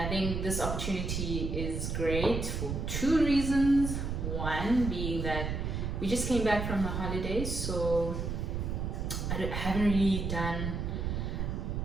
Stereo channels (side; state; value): right; noise; rumble, 2 dB below the sound